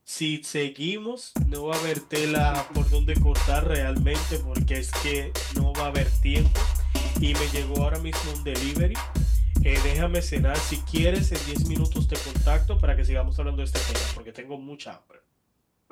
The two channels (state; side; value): identical; both; correlation 1.00